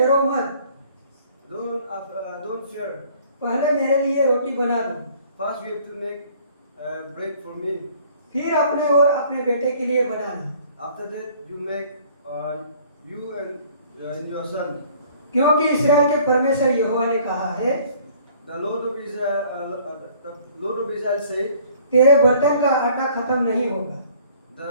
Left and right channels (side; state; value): both; inverted; correlation -0.55